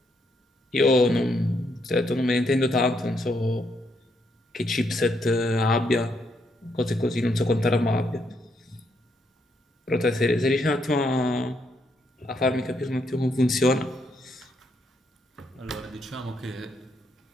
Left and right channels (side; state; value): both; normal; correlation 0.76